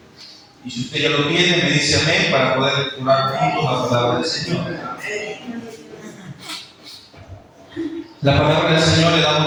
Y si usted ya lo tiene, me dice amén para poder lecturar juntos la palabra del Señor. La palabra del Señor le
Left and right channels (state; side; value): identical; both; correlation 1.00